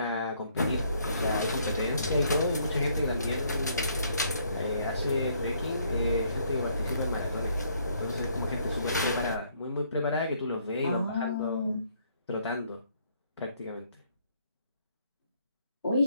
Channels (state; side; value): inverted; both; correlation -0.67